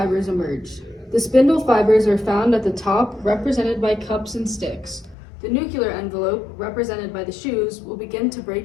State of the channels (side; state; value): right; drops out; at 5.2 s